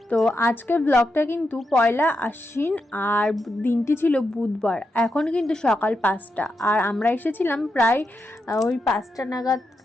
তো আজকের ব্লগটা কিন্তু পয়লা আশ্বিন আর দিনটি ছিল বুধবার। এখন কিন্তু সকাল 5টা আর আমরা এসেছিলাম প্রায় ওই 5টা নাগাদ,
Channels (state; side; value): normal; both; correlation 0.85